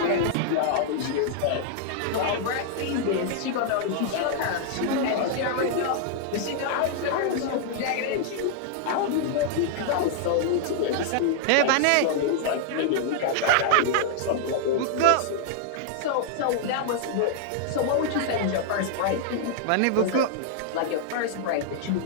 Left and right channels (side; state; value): both; different; correlation 0.00